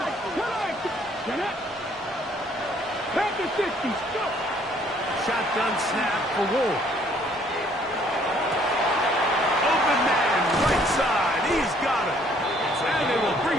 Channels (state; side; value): normal; both; correlation 0.62